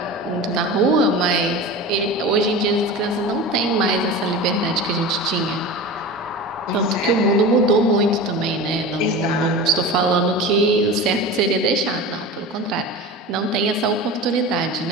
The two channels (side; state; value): both; normal; correlation 0.31